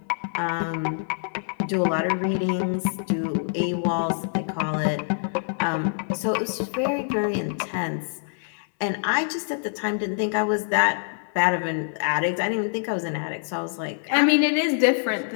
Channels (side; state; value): right; silent; 62 dB below the other